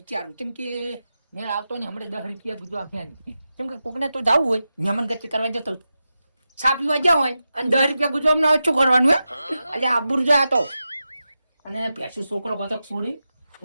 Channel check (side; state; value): both; inverted; correlation -0.91